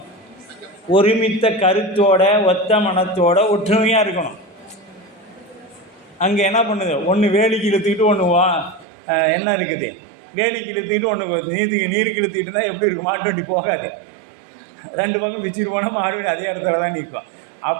ஒருமித்த கருத்தோட ஒத்த மனத்தோட ஒற்றுமையாக இருக்கணும். அங்கே என்ன பண்ணுது? ஒன்று வேலிக்கு இழுத்துக்கிட்டு ஒன்று என்ன இருக்குது? வேலிக்கு இழுத்துக்கிட்டு ஒன்று நீருக்கு இழுத்துக்கிட்டு இருந்தால் எப்படி இருக்கும்? மாட்டு வண்டி போகாது. 2 பக்கம் பிச்சுட்டு போனால் மாடு அதே இடத்துல தான் நிற்கும்.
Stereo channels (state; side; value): drops out; left; at 8.8 s